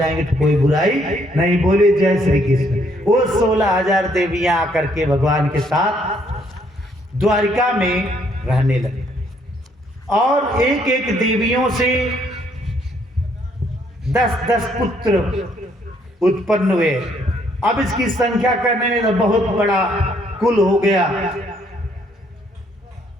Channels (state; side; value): normal; both; correlation 0.68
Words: तो कोई बुराई नहीं। बोले जय श्री कृष्ण। वो 16,000 देवियां आकर के भगवान के साथ द्वारिका में रहने लगे और एक एक देवियों से 10-10 पुत्र उत्पन्न हुए। अब इसकी संख्या करने में तो बहुत बड़ा कुल हो गया।